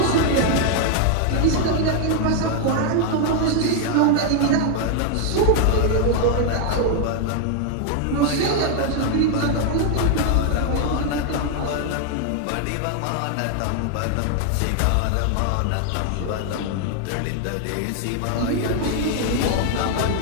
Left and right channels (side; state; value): both; different; correlation 0.00